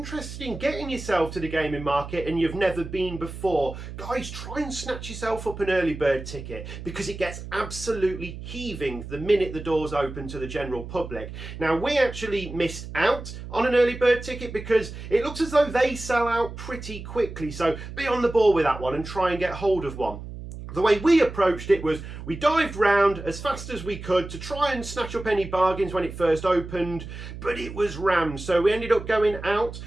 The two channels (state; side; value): noise; right; hum, 11 dB below the sound